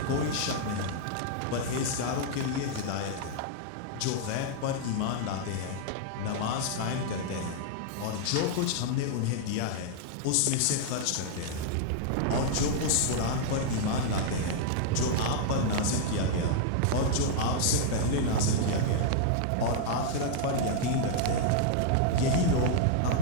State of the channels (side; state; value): both; different; correlation -0.01